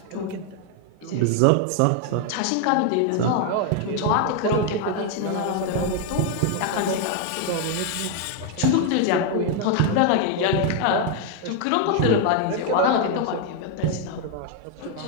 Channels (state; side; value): different; both; correlation 0.01